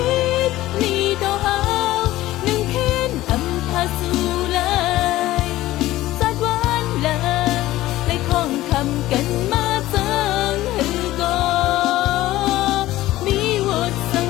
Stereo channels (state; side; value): quieter; right; 16.1 dB